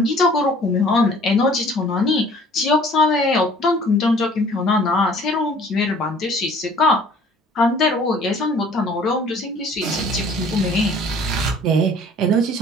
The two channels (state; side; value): normal; both; correlation 0.52